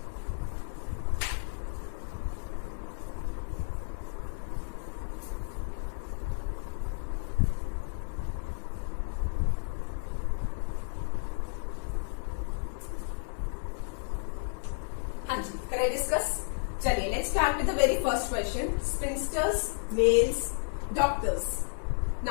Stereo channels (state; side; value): silent; right; digital silence